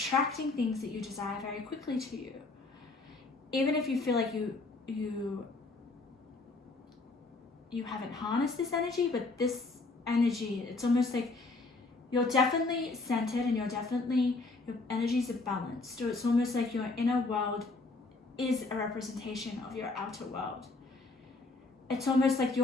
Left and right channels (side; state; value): right; quieter; 3.5 dB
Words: things that you desire very quickly to you. Even if you feel like you haven't harnessed this energy, but this energy, it's almost like you're definitely centered and your energies are balanced. So it's almost like your inner world is a representation of your outer world. It's almost like